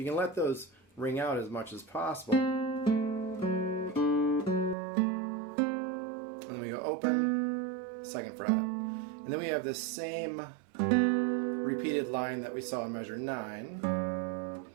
can let those ring out as much as possible. And then we go open, 2nd fret. And then we have this same repeated line that we saw in measure 9.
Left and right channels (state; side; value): drops out; left; at 4.8 s